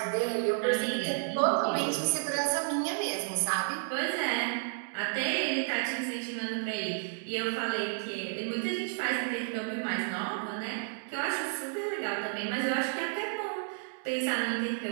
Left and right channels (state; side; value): silent; left; digital silence